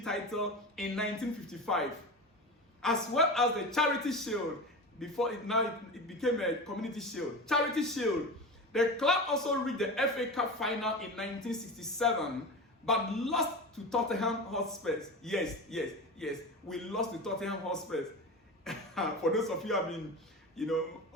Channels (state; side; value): normal; both; correlation 0.28